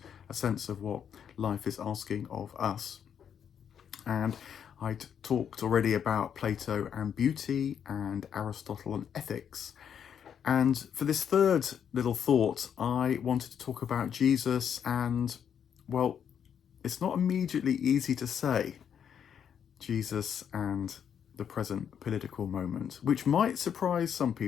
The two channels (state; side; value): quieter; right; 8.2 dB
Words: a sense of what life is asking of us. And I'd talked already about Plato and beauty and Aristotle and ethics. And for this third little thought, I wanted to talk about Jesus and, well, it's not immediately easy to say Jesus and the present political moment, which might surprise some